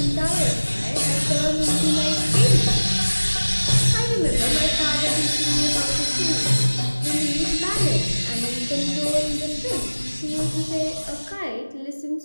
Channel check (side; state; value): both; inverted; correlation -1.00